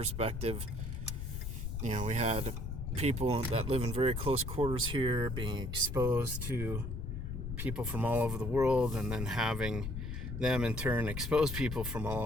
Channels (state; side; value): noise; left; rumble, 4 dB below the sound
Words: you know, we had people that live in very close quarters here being exposed to people from all over the world, and then having them in turn expose people from all